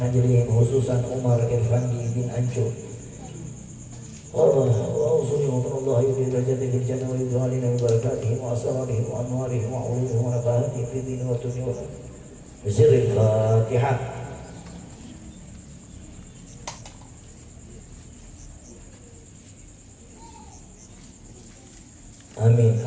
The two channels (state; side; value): identical; both; correlation 1.00